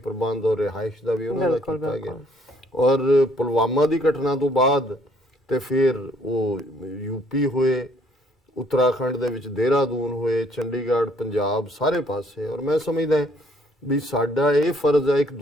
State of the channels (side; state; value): both; normal; correlation 0.64